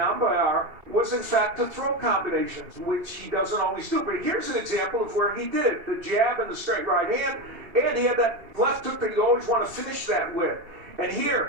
was in fact the throw combinations, which he doesn't always do. But here's an example of where he did it. The jab and the straight right hand, and he had that left hook that you always want to finish that with. And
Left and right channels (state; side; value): late; left; 2.7 ms